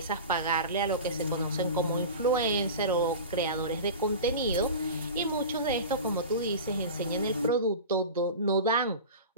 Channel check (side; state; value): both; inverted; correlation -0.31